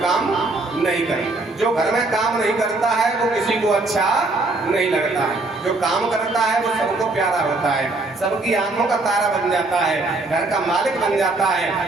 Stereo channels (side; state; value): left; quieter; 3.2 dB